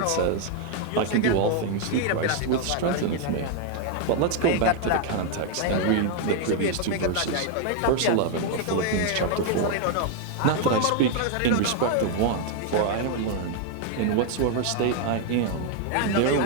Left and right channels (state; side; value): different; both; correlation 0.00